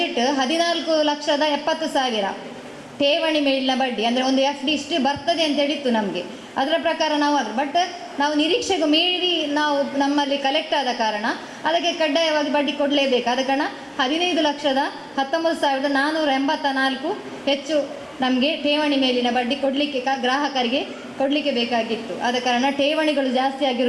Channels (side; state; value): both; identical; correlation 1.00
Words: 14,70,000 ಠೇವಣಿ ಮೇಲಿನ ಬಡ್ಡಿ, ಅಂದರೆ ಒಂದು FD ಇಷ್ಟು ಬರ್ತದೆ ಅಂತ ಹೇಳಿತ್ತು ನಮಗೆ. ಅದರ ಪ್ರಕಾರ ಬಟ್ ನಾವು ನಿರೀಕ್ಷೆಗೂ ಮೀರಿ ನಾವು ನಮ್ಮಲ್ಲಿ ಕಲೆಕ್ಟ್ ಆದ ಕಾರಣ ಅದಕ್ಕೆ ಕಡ್ಡಾಯವಾಗಿ ಬಡ್ಡಿ ಕೊಡಲೇಬೇಕು. ಆದ ಕಾರಣ 15,19,484 ಹೆಚ್ಚು ನಮಗೆ ಠೇವಣಿ ಮೇಲಿನ ಬಡ್ಡಿ ಕೊಡಲಿಕ್ಕೆ ಗ್ರಾಹಕರಿಗೆ ಕೊಡಲಿಕ್ಕೆ ಬೇಕಾಗಿತ್ತು. ಆದ ಕಾರಣ ಠೇವಣಿಗಳು ಜಾಸ್ತಿ